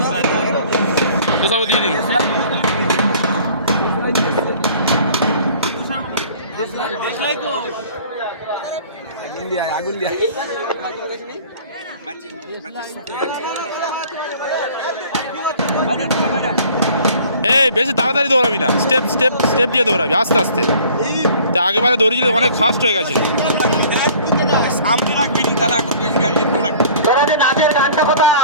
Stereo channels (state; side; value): inverted; both; correlation -0.50